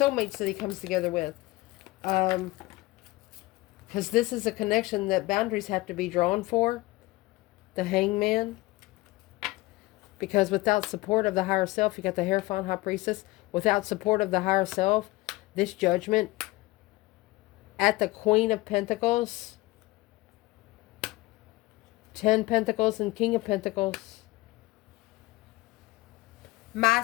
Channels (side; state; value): right; quieter; 20.4 dB